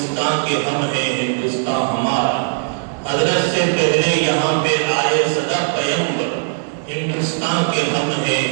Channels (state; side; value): silent; left; 58 dB below the other